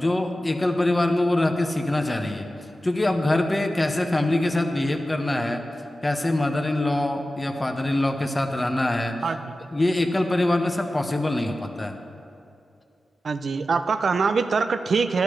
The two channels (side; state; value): both; normal; correlation 0.93